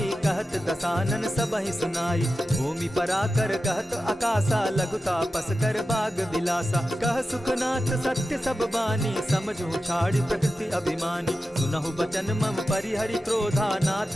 कहत दसानन सबहि सुनाई। भूमि पराकर कहत आकाशा, लघुता पस कर बाग बिलासा। कह सुखनाथ सत्य सब बानी, समझू छाड़ी प्रकृति अभिमानी। सुनहु बचन मम परिहरि क्रोधा,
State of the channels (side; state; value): both; normal; correlation 0.92